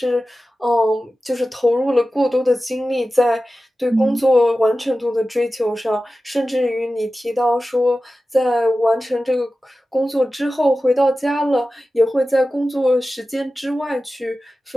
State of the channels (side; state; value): both; normal; correlation 0.94